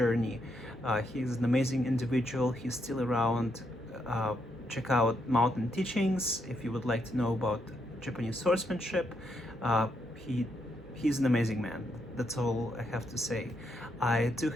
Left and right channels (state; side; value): normal; both; correlation 0.78